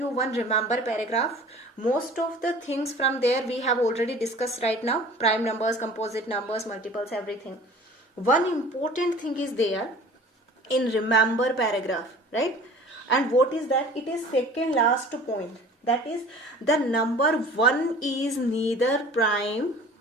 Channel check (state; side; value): normal; both; correlation 0.44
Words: one remember paragraph. Most of the things from there we have already discussed right now. Prime numbers, composite numbers, multiples, everything. One important thing is there in remember paragraph, right? And what is that? It is second last point. That is, the number 1 is neither prime